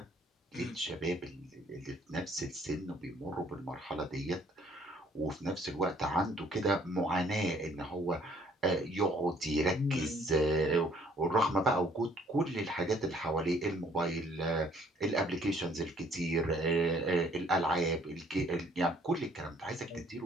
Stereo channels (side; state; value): both; normal; correlation 0.61